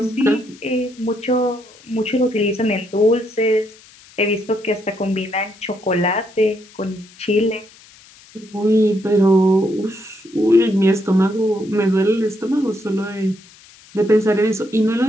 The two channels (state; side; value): noise; left; hiss, 24 dB below the sound